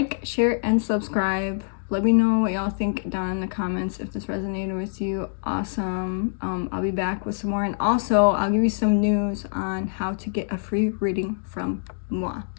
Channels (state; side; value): silent; right; digital silence